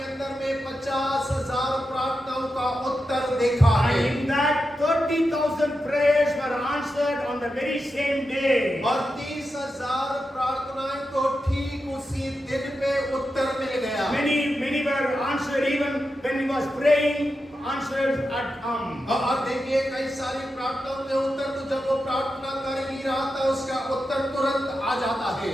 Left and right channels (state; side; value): normal; both; correlation 0.89